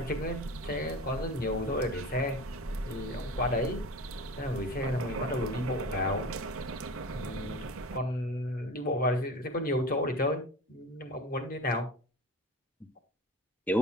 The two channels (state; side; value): normal; both; correlation 0.34